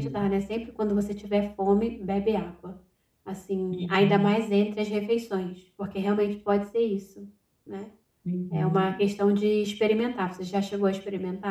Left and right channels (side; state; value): both; identical; correlation 1.00